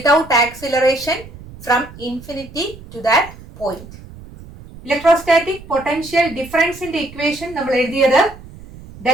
acceleration from infinity to that point. Electrostatic potential difference in the equation നമ്മൾ എഴുതിയത്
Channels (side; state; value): right; noise; rumble, 18 dB below the sound